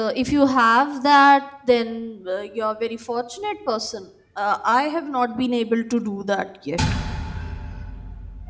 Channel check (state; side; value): identical; both; correlation 1.00